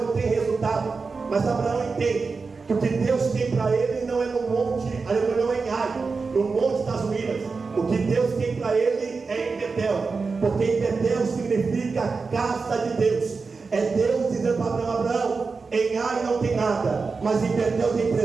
tem resultado. Mas Abraão entende que o que Deus tem para ele não é no monte, não é em Ai, no monte das ruínas. O que Deus tem para ele é em Betel, porque em Betel significa casa de Deus. É Deus dizendo para Abraão: Abraão, em Ai não tem nada, mas em Betel tem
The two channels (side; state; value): left; quieter; 4.5 dB